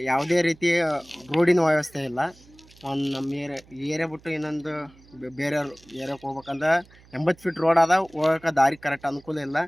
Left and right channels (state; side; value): noise; right; hum, 26 dB below the sound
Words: ಯಾವುದೇ ರೀತಿ ರೋಡಿನ ವ್ಯವಸ್ಥೆ ಇಲ್ಲ. ಒಂದು ನಮ್ಮ ಏರಿಯಾ ಬಿಟ್ಟು ಇನ್ನೊಂದು ಬೇರೆ ಏರಿಯಾಕ್ಕೆ ಹೋಗ್ಬೇಕಂದ್ರೆ 80 ಫೀಟ್ ರೋಡ್ ಅದ. ಹೋಗೋಕೆ ದಾರಿ ಕರೆಕ್ಟ್ ಅನುಕೂಲ ಇಲ್ಲ.